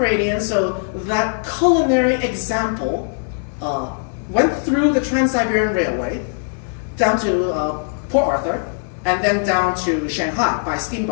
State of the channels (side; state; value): right; silent; 66 dB below the other